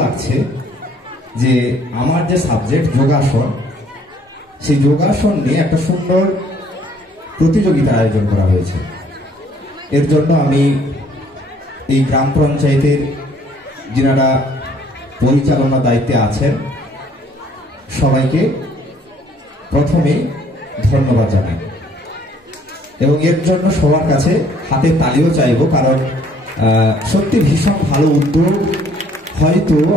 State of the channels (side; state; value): both; normal; correlation 0.61